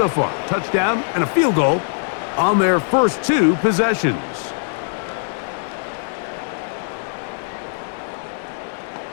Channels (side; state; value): right; silent; digital silence